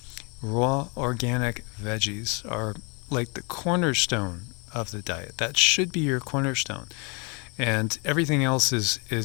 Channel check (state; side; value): quieter; right; 32.7 dB